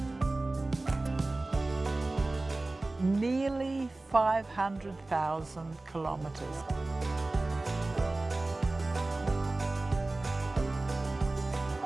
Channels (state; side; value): quieter; left; 3.0 dB